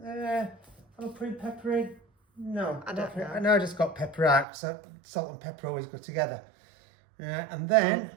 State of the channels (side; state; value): left; drops out; at 4.5 s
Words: I'm putting pepper in. No, I don't know. I know I just got pepper out, so salt and pepper always go together. And then